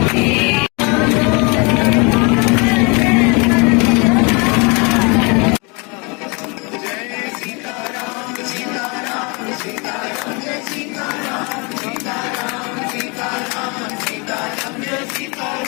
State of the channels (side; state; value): right; quieter; 30.4 dB